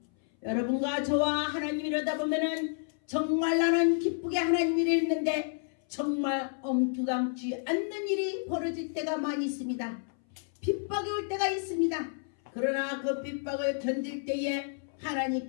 여러분과 저와 하나님 이러다 보면은 정말 나는 기쁘게 하나님 일이 있는데 정말 엉뚱함지 않는 일이 벌어질 때가 많이 있습니다. 핍박이 올 때가 있습니다. 그러나 그 핍박을 견딜 때에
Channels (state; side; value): silent; right; 58 dB below the other